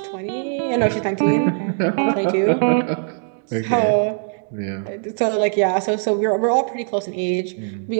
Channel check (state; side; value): silent; left; 64 dB below the other